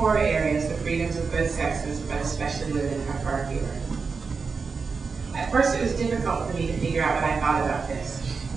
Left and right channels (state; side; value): quieter; left; 4.9 dB